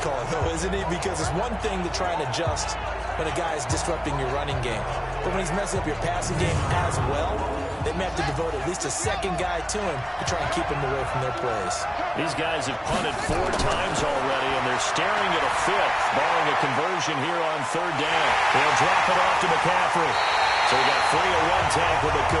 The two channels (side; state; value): both; identical; correlation 1.00